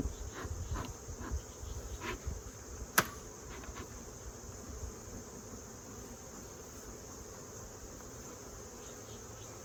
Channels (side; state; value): both; identical; correlation 1.00